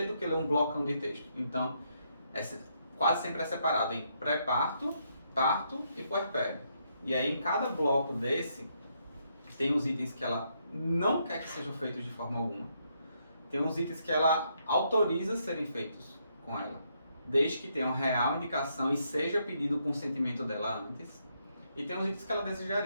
do que ler um blocão de texto. Então, quase sempre é separado em pré-parto, parto e puerpério. E aí em cada bloco desse, tem os itens que ela não quer que sejam feitos de forma alguma. Tem uns itens que ela autoriza serem feitos com ela, desde que tenham real indicação e seja pedido o consentimento dela antes. E tem uns itens que ela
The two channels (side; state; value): both; inverted; correlation -0.76